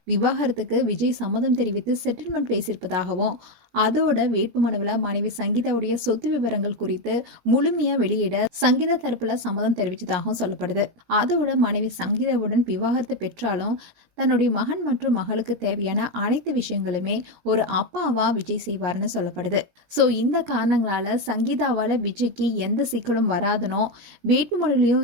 விவாகரத்துக்கு விஜய் சம்மதம் தெரிவித்து செட்டில்மெண்ட் பேசியிருப்பதாகவும் அதோட வேட்புமனுவில் மனைவி சங்கீதாவுடைய சொத்து விவரங்கள் குறித்து முழுமையா வெளியிட சங்கீதா தரப்புல சம்மதம் தெரிவித்ததாகவும் சொல்லப்படுது. அதோட மனைவி சங்கீதாவுடன் விவாகரத்து பெற்றாலும் தன்னுடைய மகன் மற்றும் மகளுக்கு தேவையான அனைத்து விஷயங்களுமே ஒரு அப்பாவா விஜய் செய்வார்னு சொல்லப்படுது. ஸோ இந்த காரணங்களால சங்கீதாவால விஜய்க்கு எந்த சிக்கலும் வராதுனோ வேட்புமனுலையும்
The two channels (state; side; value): late; left; 17 ms